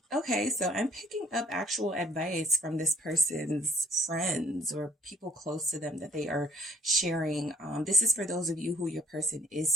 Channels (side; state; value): both; normal; correlation 0.63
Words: okay, so I'm picking up actual advice from this person's friends or people close to them that they are sharing. This is for those of you who your person is